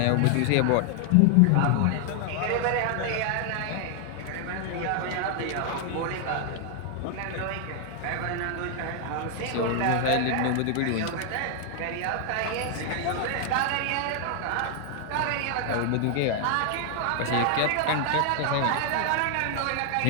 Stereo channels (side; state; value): both; different; correlation 0.00